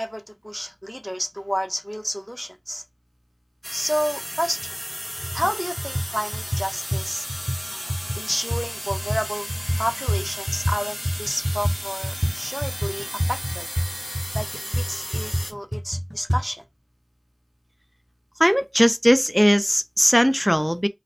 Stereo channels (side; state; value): both; identical; correlation 1.00